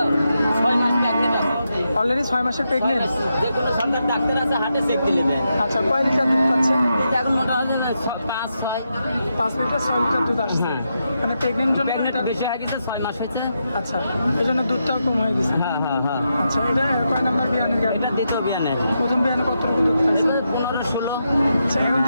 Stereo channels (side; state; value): both; inverted; correlation -0.84